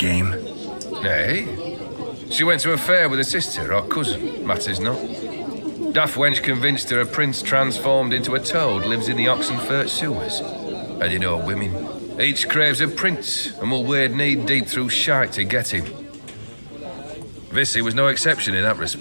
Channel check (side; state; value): both; inverted; correlation -1.00